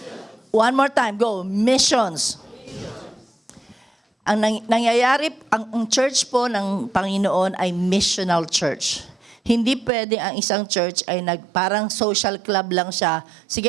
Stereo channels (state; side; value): drops out; left; at 9.9 s